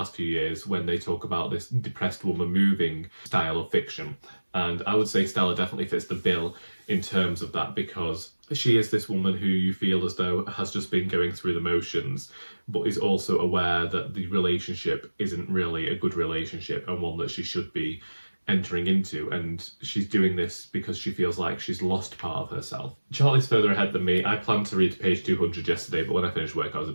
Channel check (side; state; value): both; inverted; correlation -1.00